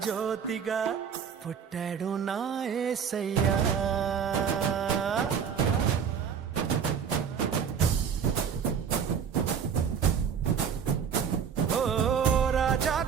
జ్యోతిగా పుట్టాడు నా యేసయ్యా. ఓ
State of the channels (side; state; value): left; quieter; 7.3 dB